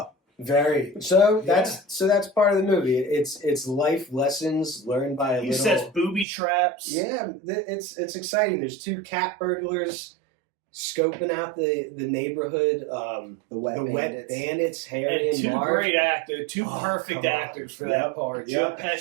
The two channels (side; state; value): left; drops out; at 6.2 s